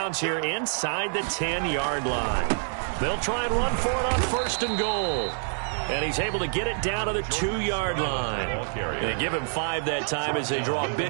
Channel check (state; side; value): silent; left; digital silence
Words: here inside the 10-yard line. They'll try and run for it on 1st and goal. And he's able to get it down to the 2-yard line. They give him 5 that time as they draw a